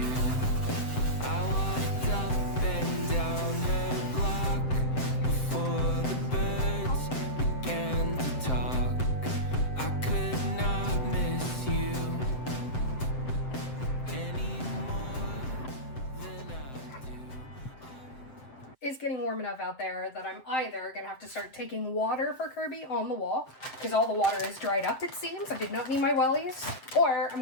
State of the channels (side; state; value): right; late; 7.7 ms